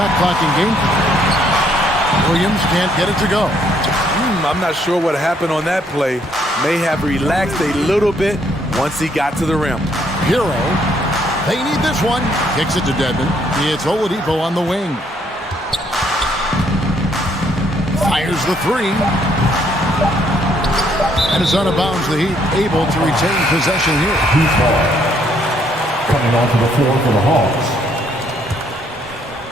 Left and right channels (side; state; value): both; normal; correlation 0.69